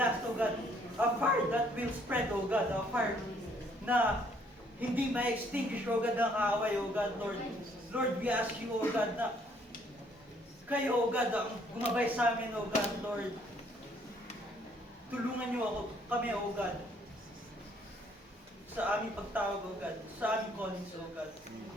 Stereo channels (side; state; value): both; normal; correlation 0.65